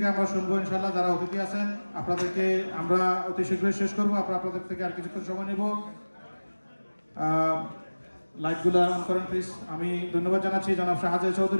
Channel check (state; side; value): inverted; both; correlation -1.00